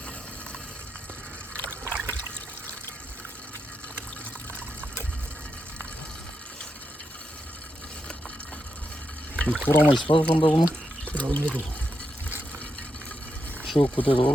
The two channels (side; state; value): both; normal; correlation 0.85